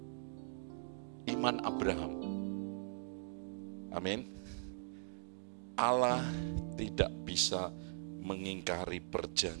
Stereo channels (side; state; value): left; silent; digital silence